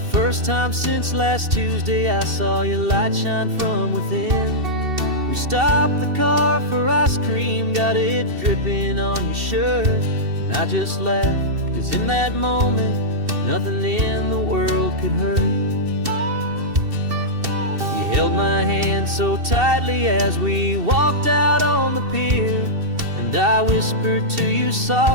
time since last Tuesday, I saw your light shine from within. We stopped the car for ice cream, got it dripping on your shirt. And I just laughed, 'cause in that moment, nothing in the world could hurt. You held my hand so tightly as we walked out on the pier. And I whispered to you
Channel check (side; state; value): left; late; 2.7 ms